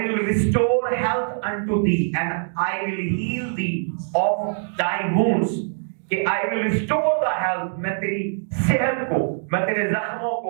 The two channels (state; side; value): silent; left; digital silence